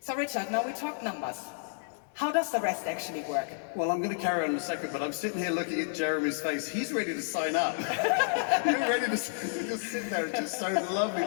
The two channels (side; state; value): right; silent; digital silence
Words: Richard, now we talk numbers. How does the rest actually work? Well, I'm going to carry on in a second, but I'm sitting here looking at Jeremy's face. He's ready to sign up. You're ready to just sit there. It's just so lovely